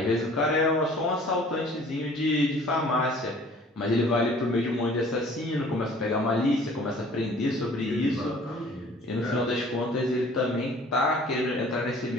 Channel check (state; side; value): normal; both; correlation 0.51